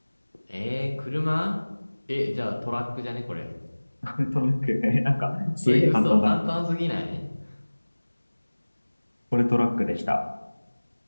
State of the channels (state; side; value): inverted; both; correlation -1.00